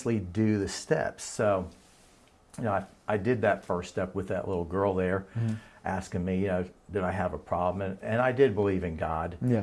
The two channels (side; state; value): both; identical; correlation 1.00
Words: do the steps. So, I did that first step with that little girl there, asking me, did I have a problem? And I did believe in God.